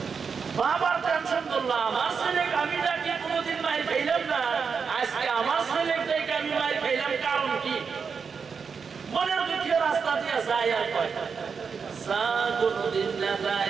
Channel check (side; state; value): left; quieter; 5.8 dB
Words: বাবার টেনশন করলাম, আমার ছেলেকে আমি ডাকি কোনোদিন মাইর খাইলাম না, আজকে আমার ছেলেকে আমি মাইর খাইলাম, কারণ কি? মনের দুঃখে রাস্তা দিয়ে যায় আর কয় যা কোনোদিন না